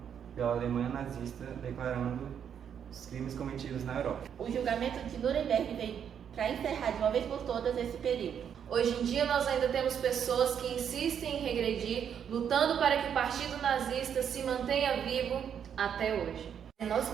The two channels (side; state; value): left; quieter; 8.3 dB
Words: pela Alemanha nazista, declarando os crimes cometidos na Europa. o julgamento de Nuremberg veio para encerrar de uma vez por todas esse período. Hoje em dia nós ainda temos pessoas que insistem em regredir, lutando para que o Partido Nazista se mantenha vivo até hoje. É nosso